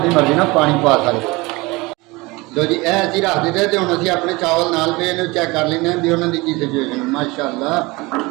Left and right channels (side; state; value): left; quieter; 23.4 dB